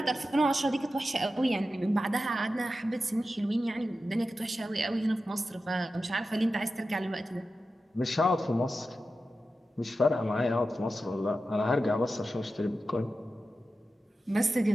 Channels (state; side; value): normal; both; correlation 0.92